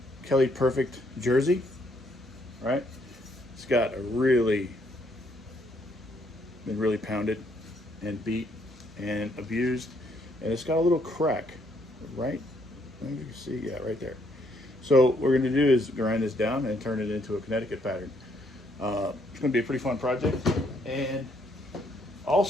Kelly Perfect jersey, right? It's got a been really pounded and beat and abused, and it's got a little crack, right? You can see, yeah, right there. So what we're going to do is grind this down and turn it into a Connecticut pattern. It's going to be a pretty fun project. And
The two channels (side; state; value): both; normal; correlation 0.70